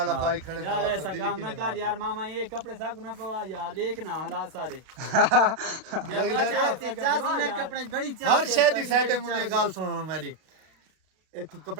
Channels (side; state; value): left; late; 32 ms